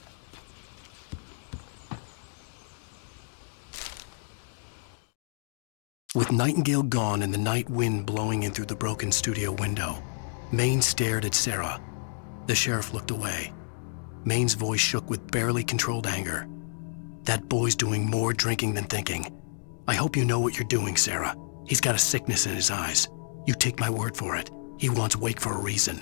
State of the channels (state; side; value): silent; right; digital silence